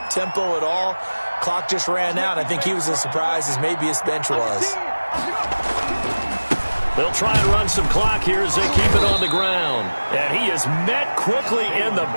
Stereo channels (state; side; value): inverted; both; correlation -1.00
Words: at all. Clock just ran out. I think he was as surprised as maybe his bench was. They'll try and run some clock here as they keep it on the ground. And he is met quickly in the